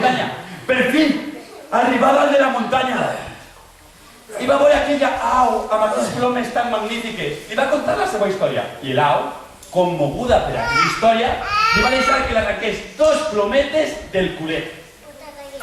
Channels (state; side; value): identical; both; correlation 1.00